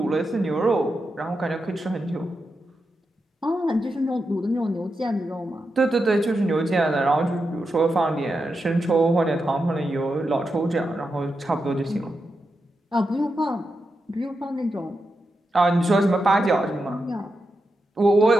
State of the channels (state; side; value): normal; both; correlation 0.87